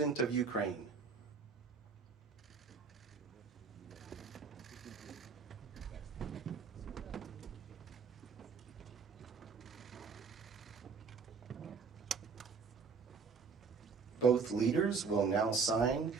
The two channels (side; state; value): left; quieter; 5.3 dB